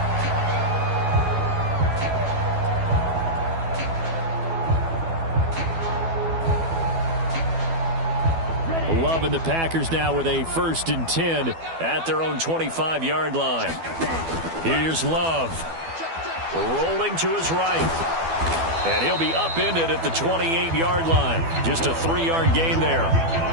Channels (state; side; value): late; left; 12 ms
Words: Loving the Packers now with a 1st and 10 at their own 25-yard line. Here's Love. Rolling to his right. And he'll be upended at the 28-yard line. Just a 3-yard gain there.